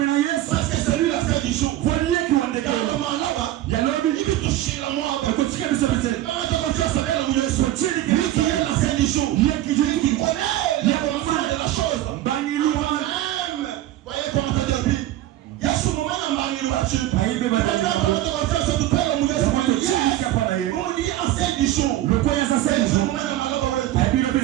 Parce que c'est lui la fin du jour. Car le moment là-bas, il veut toucher la moi. Lui qui est la fin du jour. Lui qui connaît le commencement de la chose. Voyez comment ça dit. Il y a ce moment dans Bangi Louachi. On me dit en fin du jour.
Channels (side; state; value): left; quieter; 14.1 dB